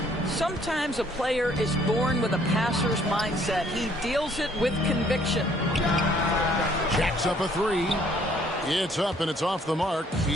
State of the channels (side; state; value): both; normal; correlation 0.62